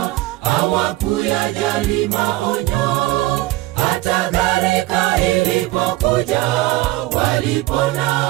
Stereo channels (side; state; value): left; quieter; 18.4 dB